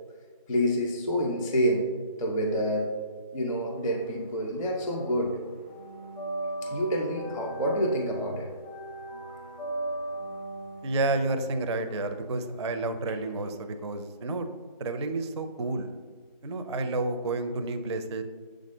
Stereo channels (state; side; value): inverted; both; correlation -0.50